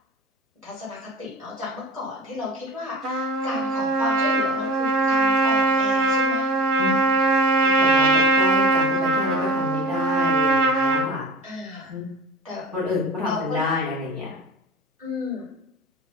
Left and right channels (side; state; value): both; normal; correlation 0.37